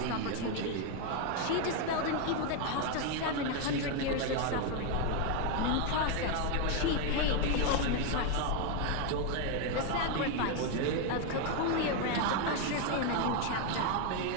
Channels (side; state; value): both; different; correlation 0.01